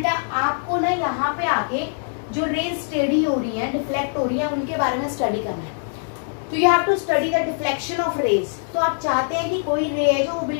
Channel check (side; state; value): right; silent; 64 dB below the other